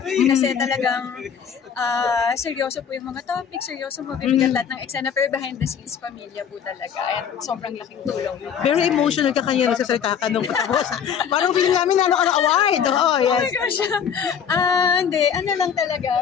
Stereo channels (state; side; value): quieter; right; 7.7 dB